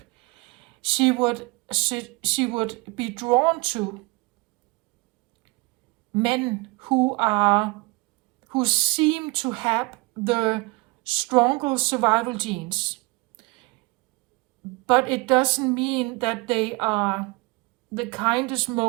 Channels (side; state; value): left; quieter; 25.5 dB